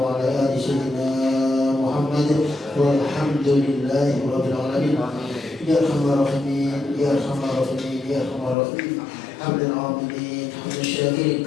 آل سيدنا محمد والحمد لله رب العالمين. يا أرحم الراحمين يا أرحم الراحمين يا أرحم الراحمين. حمد العاملين حمد الشاكرين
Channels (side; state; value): right; drops out; at 8.6 s